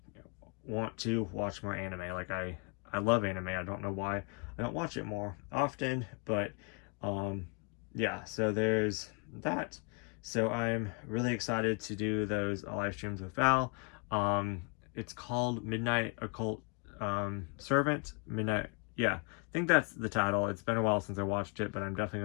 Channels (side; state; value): right; quieter; 36.2 dB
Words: Want to watch more anime. Like, I love anime. I don't know why I don't watch it more often, but yeah, so there's that. So I'm really excited to do those live streams with Val. It's called Midnight Occult Servant. Midnight, yeah, I think that's the title. It's been a while since I watched it, but I'm definitely